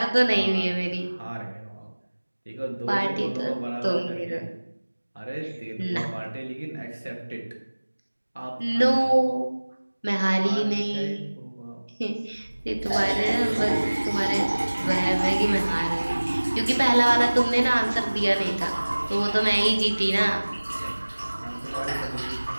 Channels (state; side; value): inverted; both; correlation -1.00